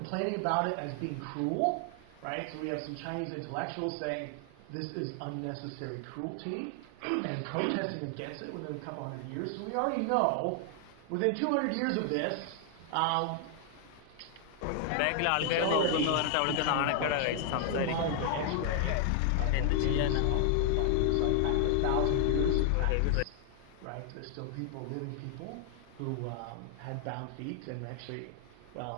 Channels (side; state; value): both; different; correlation 0.00